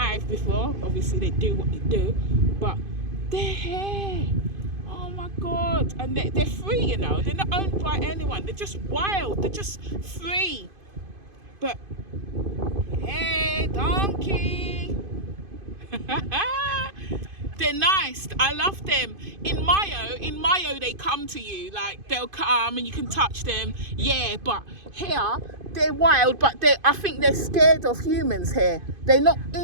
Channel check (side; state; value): left; late; 2.5 ms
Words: before. Obviously they do what they do, but they're here. Oh my God. And they're free, you know. They're not owned by anyone. They're just wild. They're just free. But hey, donkey. They're nice. I love them. In Mayo, they come to you. Like, they'll come and you can touch them. Yeah, but here, they're wild, but I think they're scared of humans here. They're not